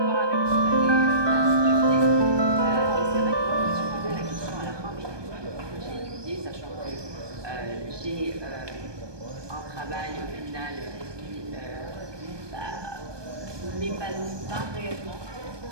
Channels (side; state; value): left; late; 1.2 ms